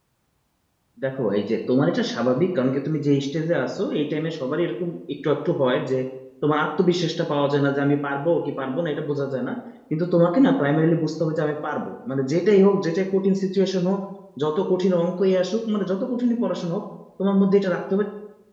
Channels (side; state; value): both; identical; correlation 1.00